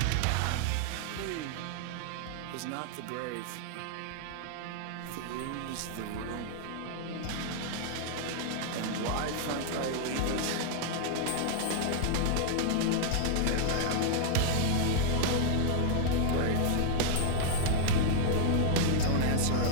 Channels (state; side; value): different; both; correlation 0.00